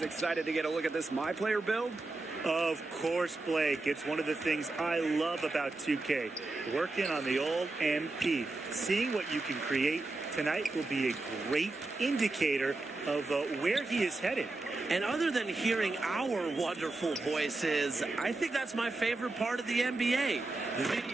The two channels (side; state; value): left; quieter; 3.2 dB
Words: excited to get a look at this My Player build? Of course, Blake. It's one of the things I love about 2K. Working on the old MP. Seeing what you can create tonight will be a great indicator of where he is headed. And other than hearing our wonderful voices, I think that's my favorite part of the NBA. The